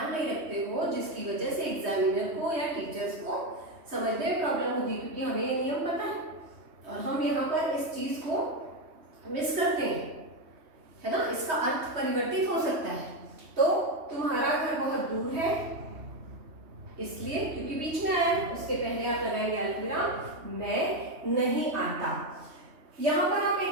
नहीं रखते हो, जिसकी वजह से एग्जामिनर को या टीचर्स को समझने में प्रॉब्लम होती है, क्योंकि हमें ये नियम पता है और हम यहाँ पर इस चीज को मिस करते हैं, है ना। इसका अर्थ परिवर्तित हो सकता है। तो तुम्हारा घर बहुत दूर है इसलिए, क्योंकि बीच में आया है, उसके पहले आप लगाएंगे अल्पविराम, मैं नहीं आता। यहाँ पर आप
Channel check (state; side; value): late; left; 3.1 ms